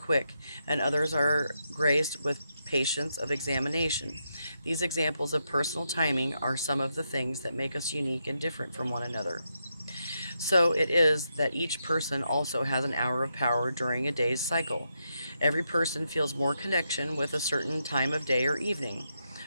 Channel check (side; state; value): both; inverted; correlation -0.83